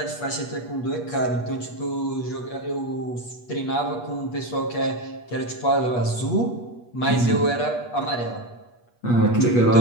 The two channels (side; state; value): right; late; 8.3 ms